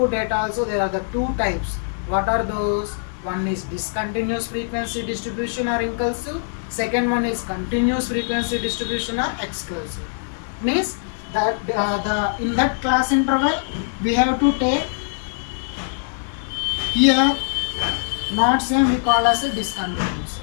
data also there are the two types. What are those? One is discontinuous frequency distribution or inclusive. Second one is continuous frequency distribution or exclusive. Means that in that class interval we have to take here not same we call as a discontinuous.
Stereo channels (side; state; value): right; silent; digital silence